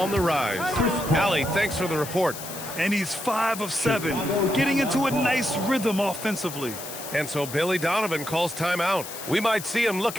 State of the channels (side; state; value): left; noise; hiss, 10 dB below the sound